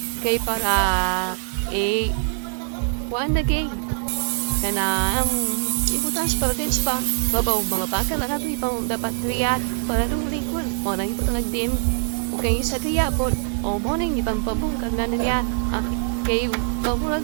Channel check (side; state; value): left; silent; digital silence